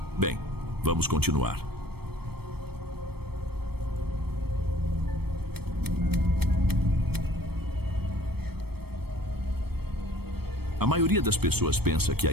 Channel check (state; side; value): late; left; 0.96 ms